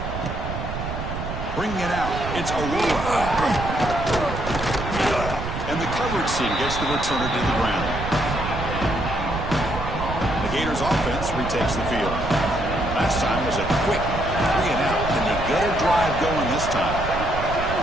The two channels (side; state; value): right; noise; rumble, 6 dB below the sound